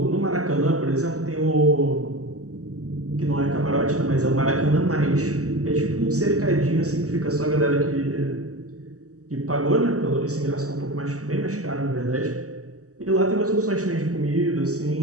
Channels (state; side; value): late; left; 0.66 ms